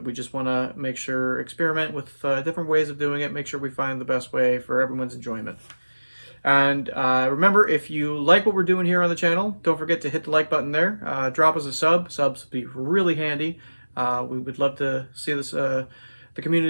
We just want to make sure, experiment with different ways of doing it, make sure we find the best way for everyone's enjoyment. And remember, if you like what we're doing here on the channel, don't forget to hit the like button there. Drop us a sub. Subs would be really handy. We would love to see this the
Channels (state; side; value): inverted; both; correlation -1.00